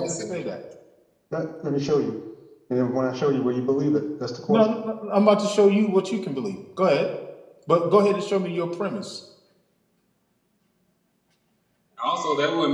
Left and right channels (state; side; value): identical; both; correlation 1.00